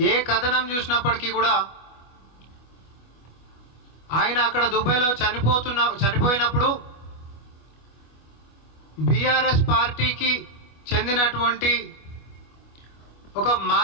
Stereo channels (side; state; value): right; late; 24 ms